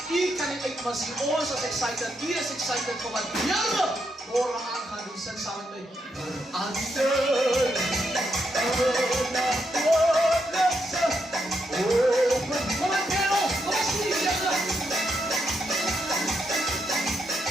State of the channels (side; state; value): both; normal; correlation 0.80